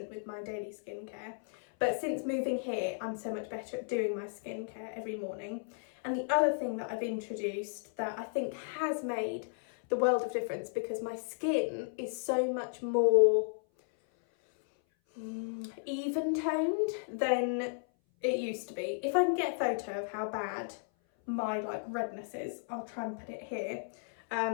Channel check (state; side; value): silent; right; 55 dB below the other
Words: with my daily skincare. But since moving here, I'm so much better at doing my skincare every morning. And the other thing that I've introduced that I think has made the world of difference, because my skin is so much more even toned than it used to be. If I can get a photo of how bad my redness is, I'll try and put it here.